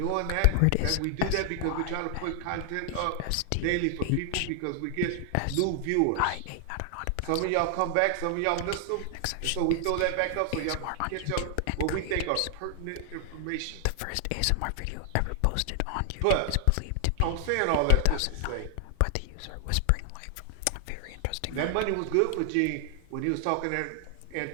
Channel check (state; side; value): different; both; correlation 0.00